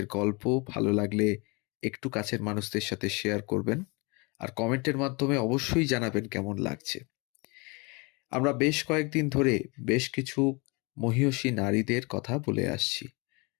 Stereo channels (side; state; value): right; quieter; 29.0 dB